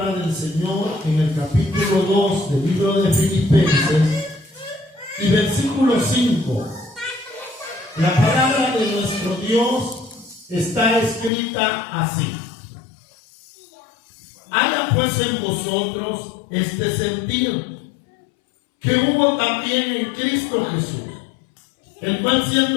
del Señor en el capítulo 2 del libro de Filipenses y versículo 5. La palabra de nuestro Dios está escrita así: haya pues en vosotros este sentir que hubo también en Cristo Jesús, el cual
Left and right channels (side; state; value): right; drops out; at 11.3 s